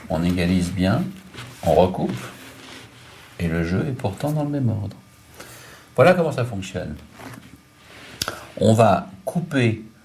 On égalise bien, on recoupe, et le jeu est pourtant dans le même ordre. Voilà comment ça fonctionne. On va couper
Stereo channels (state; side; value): identical; both; correlation 1.00